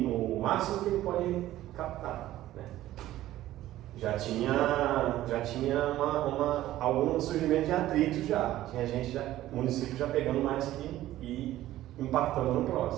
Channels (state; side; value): quieter; left; 14.5 dB